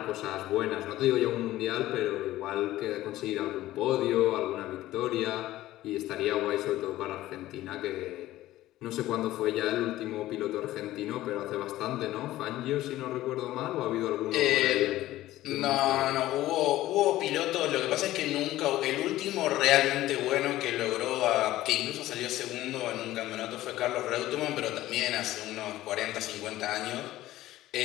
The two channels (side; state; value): right; quieter; 15.4 dB